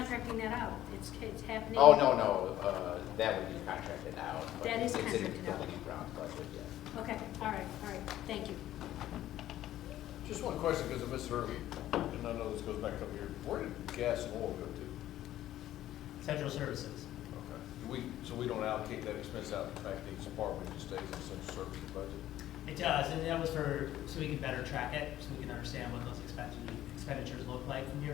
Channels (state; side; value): quieter; right; 13.4 dB